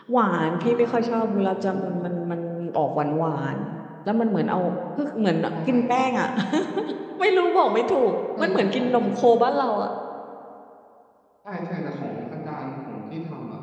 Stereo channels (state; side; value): identical; both; correlation 1.00